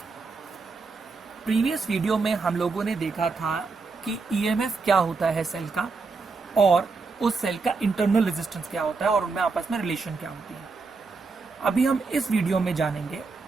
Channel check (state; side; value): quieter; left; 4.3 dB